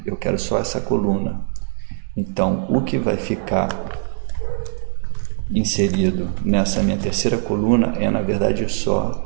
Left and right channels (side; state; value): left; silent; digital silence